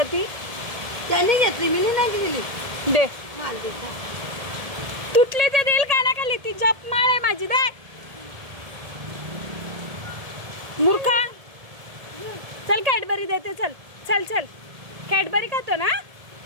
ती. त्याने घेतली, मी नाही गेली. दे माल देता तुटली ते देईल कानाखाली. ती जप माळ आहे माझी. दे मूर्खा. चल कॅडबरी देते. चल चल चल. कॅडबरी खातो ना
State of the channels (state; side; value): late; left; 1.7 ms